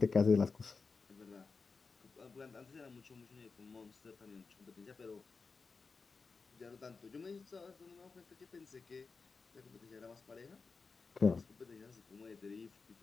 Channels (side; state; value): right; quieter; 4.6 dB